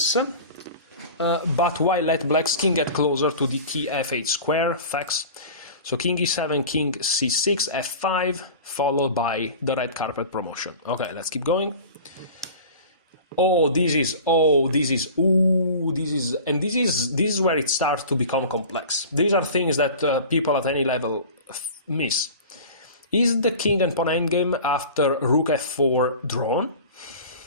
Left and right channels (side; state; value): both; inverted; correlation -0.38